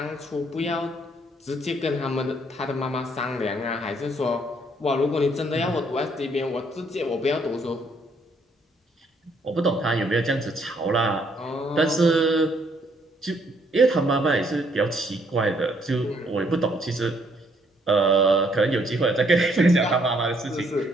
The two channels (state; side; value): normal; both; correlation 0.68